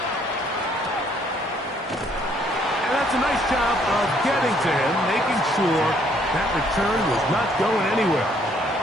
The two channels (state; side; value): normal; both; correlation 0.66